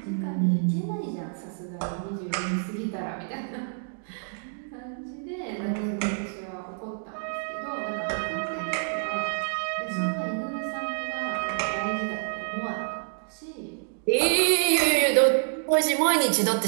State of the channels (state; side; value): silent; left; digital silence